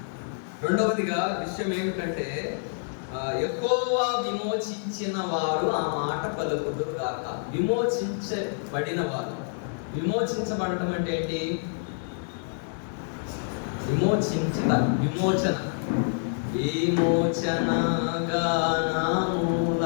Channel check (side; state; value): right; silent; digital silence